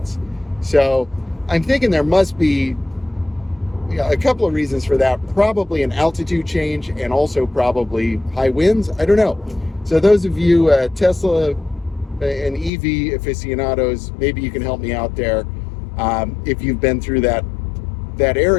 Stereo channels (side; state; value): right; drops out; at 12.7 s